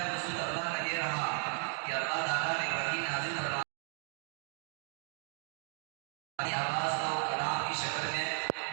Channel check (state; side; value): silent; left; 54 dB below the other